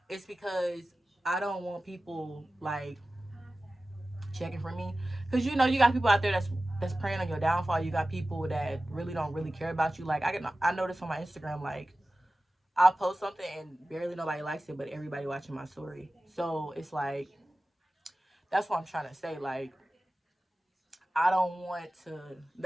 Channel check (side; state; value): both; normal; correlation 0.96